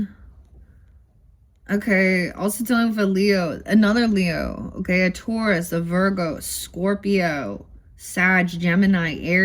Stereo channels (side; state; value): both; identical; correlation 1.00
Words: Okay. Also dealing with a Leo. Another Leo. Okay. A Taurus, a Virgo, Scorpio, Sag, Gemini,